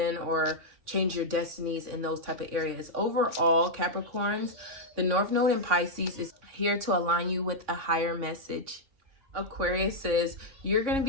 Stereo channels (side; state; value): left; late; 3.6 ms